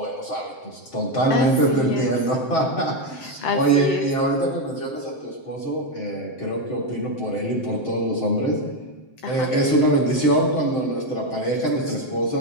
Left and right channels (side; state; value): right; late; 7.7 ms